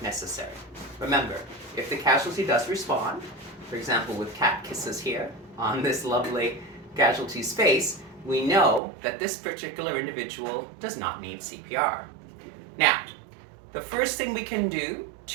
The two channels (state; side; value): drops out; left; at 8.8 s